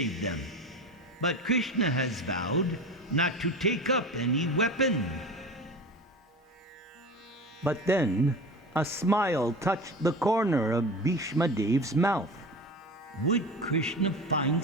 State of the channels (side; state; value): both; normal; correlation 0.31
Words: them. But Krishna has vowed not to take up any weapon. But then a smile touched the corner of Bhishma Dev's mouth. Would Krishna find